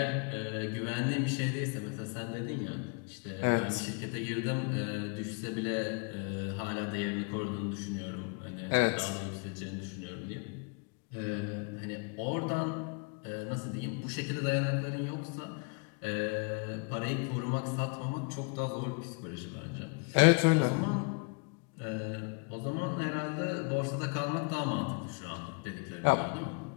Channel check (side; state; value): right; quieter; 30.4 dB